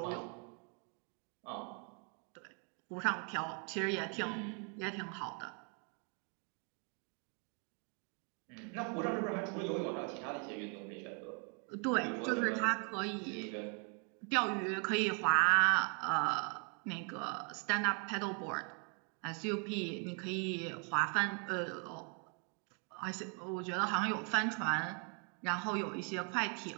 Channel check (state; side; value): quieter; left; 38.4 dB